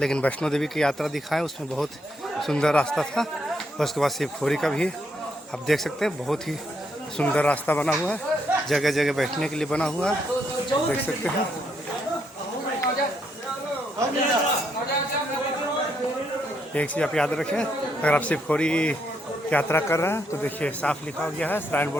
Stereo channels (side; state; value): both; normal; correlation 0.76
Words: वैष्णो देवी की यात्रा दिखाएं उसमें बहुत सुंदर रास्ता था। उसके बाद शिवखोरी का भी आप देख सकते हैं बहुत ही सुंदर रास्ता बना हुआ है, जगह जगह बैठने के लिए बना हुआ है, देख सकते हैं। एक चीज़ आप याद रखें, अगर आप शिवखोरी यात्रा कर रहे हैं तो देखिए साफ लिखा गया है श्राइन